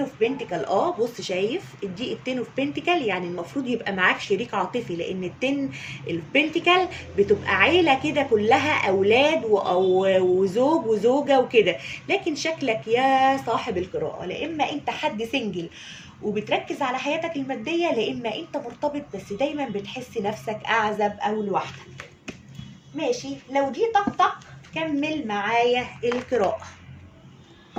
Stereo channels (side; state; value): both; identical; correlation 1.00